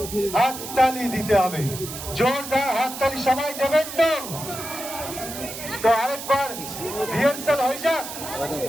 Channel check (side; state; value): right; noise; hiss, 9 dB below the sound